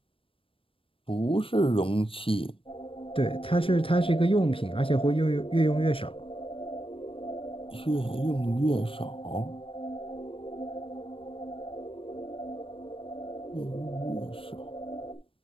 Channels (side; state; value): right; late; 0.26 ms